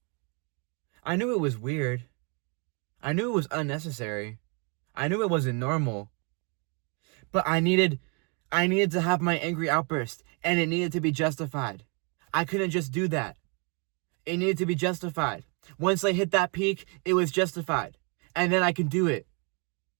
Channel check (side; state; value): left; quieter; 34.9 dB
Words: I knew it was weird. I knew it was unnecessary. I knew it wasn't normal. But I needed to have my angry outburst, and it needed to be justified. I couldn't just do that. It needed to be justified. Once I hit that peak, it was justified. And then I can do it.